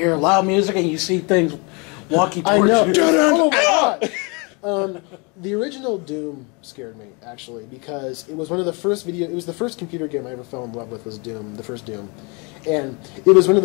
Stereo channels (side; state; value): right; quieter; 30.6 dB